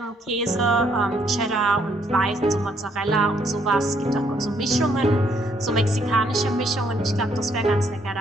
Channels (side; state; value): both; normal; correlation 0.69